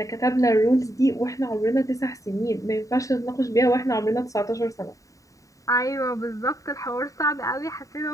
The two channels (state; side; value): late; right; 0.16 ms